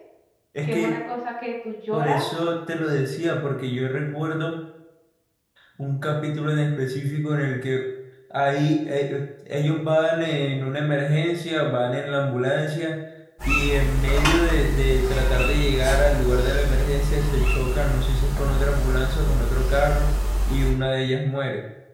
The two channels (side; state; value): both; identical; correlation 1.00